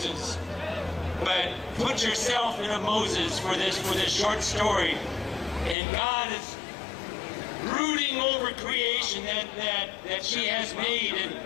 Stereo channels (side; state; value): right; drops out; at 5.8 s